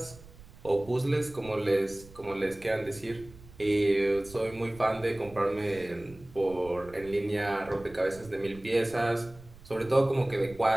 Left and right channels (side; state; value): right; noise; rumble, 20 dB below the sound